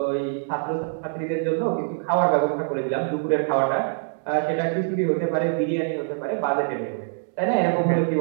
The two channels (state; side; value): silent; left; digital silence